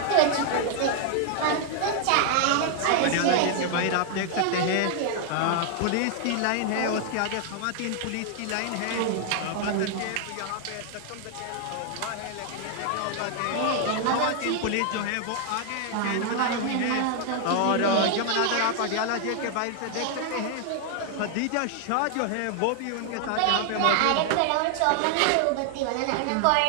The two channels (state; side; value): different; both; correlation 0.00